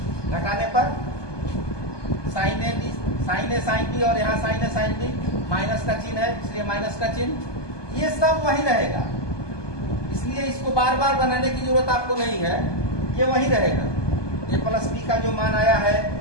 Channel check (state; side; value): late; right; 1.2 ms